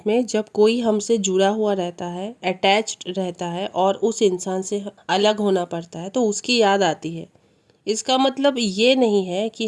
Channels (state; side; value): identical; both; correlation 1.00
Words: में जब कोई हमसे जुड़ा हुआ रहता है, अटैच्ड रहता है और उस इंसान से अलग होना पड़ता है तो उसकी याद आती है। इसका मतलब ये नहीं है कि